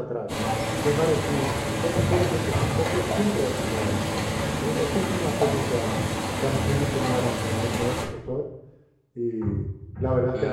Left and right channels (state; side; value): identical; both; correlation 1.00